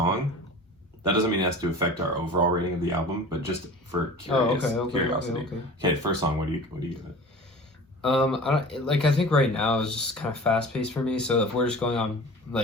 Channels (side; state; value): both; normal; correlation 0.40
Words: That doesn't mean it has to affect our overall rating of the album, but just for curiosity. Okay, first song. What do you give it? I think right now is just kind of fast paced for me. So if we're just going on